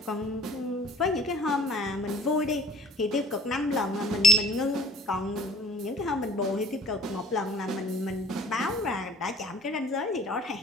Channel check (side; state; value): both; normal; correlation 0.48